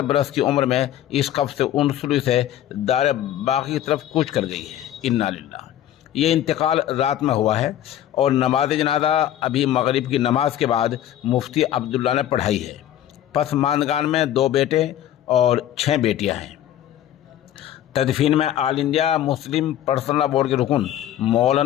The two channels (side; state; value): right; quieter; 11.8 dB